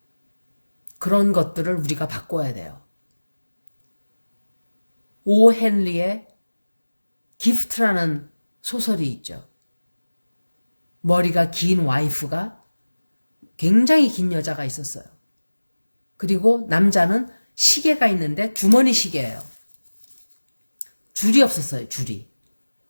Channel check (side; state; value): both; inverted; correlation -1.00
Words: 그런 것들을 우리가 바꿔야 돼요. 오 헨리의 기프트라는 소설이 있죠. 머리가 긴 와이프가, 굉장히 긴 여자가 있었어요. 그리고 남자는 시계가 있는데 주머니 시계예요. 줄이 없었어요. 줄이.